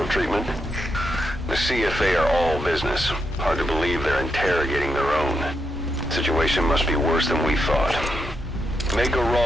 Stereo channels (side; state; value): both; normal; correlation 0.83